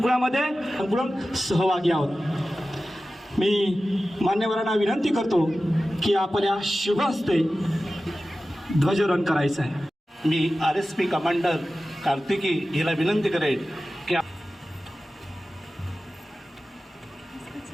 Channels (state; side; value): normal; both; correlation 0.95